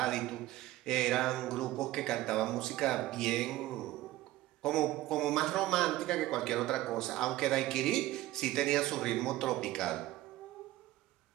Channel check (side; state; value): left; quieter; 16.3 dB